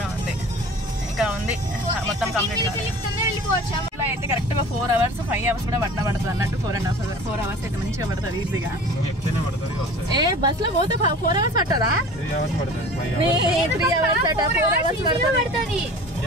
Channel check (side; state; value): both; normal; correlation 0.41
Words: ఉంది, ఇంకా ఉంది, మొత్తం కంప్లీట్ కాలేదు. ఇలా అయితే కరెక్ట్గా 4 hours 5 hours కూడా పడుతుంది అన్నట్టు. 4 hours అయితే మంచిగా పడుతుంది ఈజీగా. ఏ బస్ లో పోతే 4 hours పట్టదా? 3 hours అట, 4 hours పడుతుంది.